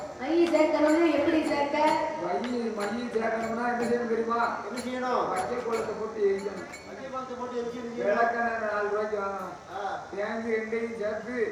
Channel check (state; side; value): identical; both; correlation 1.00